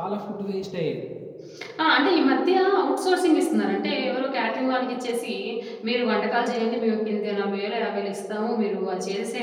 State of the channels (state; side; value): identical; both; correlation 1.00